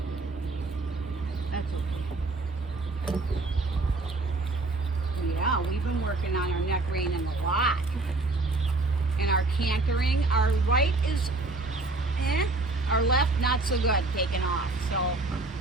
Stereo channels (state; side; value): quieter; left; 3.2 dB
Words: That's okay. Yeah, we've been working on our neck reining a lot. And our cantering, our right is our left not so good, taking off. So